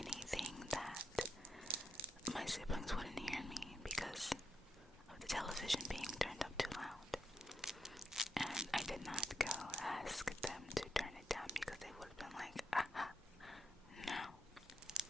that my siblings wouldn't hear me because of the television being turned up too loud. And I did not go ask them to turn it down because they would have been like, no.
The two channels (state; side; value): normal; both; correlation 0.81